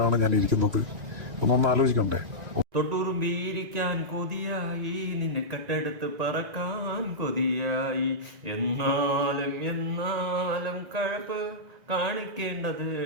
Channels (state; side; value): late; left; 1.9 ms